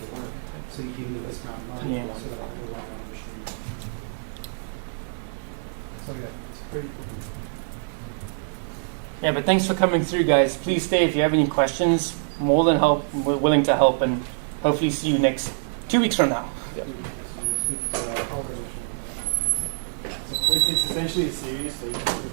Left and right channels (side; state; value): left; silent; digital silence